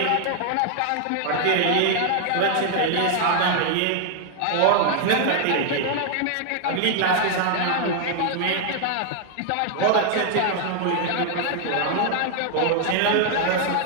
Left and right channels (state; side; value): different; both; correlation 0.00